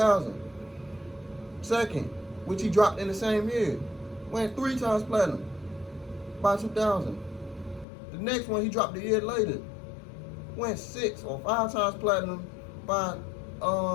Second, which he dropped in the same year, went 3 times platinum by 2000. The next one he dropped a year later, went 6 or 5 times platinum by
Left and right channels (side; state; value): right; drops out; at 7.9 s